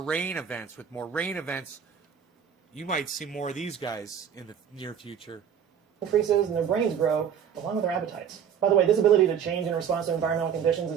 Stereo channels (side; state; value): left; quieter; 8.1 dB